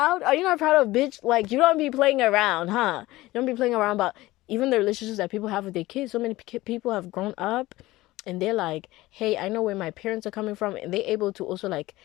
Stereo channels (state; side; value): quieter; right; 18.2 dB